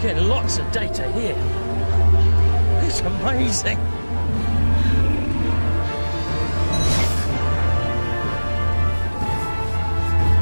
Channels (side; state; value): both; inverted; correlation -1.00